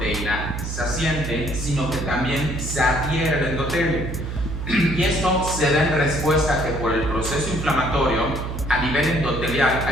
se asiente, sino que también se adhiere al endotelio. Y esto se da en respuesta a que por el proceso inflamatorio a nivel endotelial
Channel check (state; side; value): noise; right; hum, 5 dB below the sound